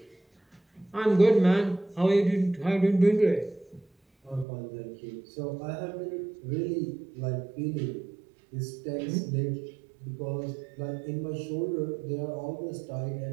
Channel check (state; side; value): drops out; left; at 4.5 s